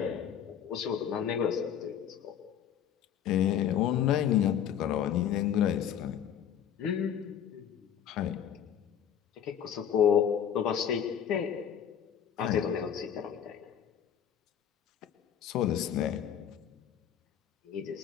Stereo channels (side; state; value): right; quieter; 9.1 dB